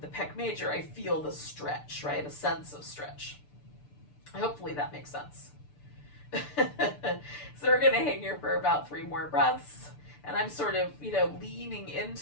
the pec major, I feel the stretch, right? A sense of stretch. Hopefully that makes sense. So we're gonna hang here for about 3 more breaths, and I'm sort of, leaning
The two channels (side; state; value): right; late; 6.8 ms